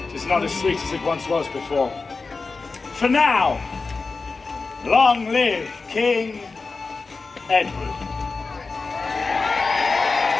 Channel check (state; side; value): quieter; right; 4.1 dB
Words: It is not as sweet as it once was before. For now, long live King Edward.